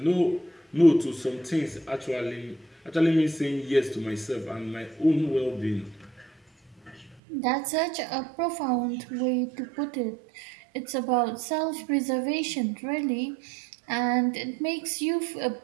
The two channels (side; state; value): left; drops out; at 7.2 s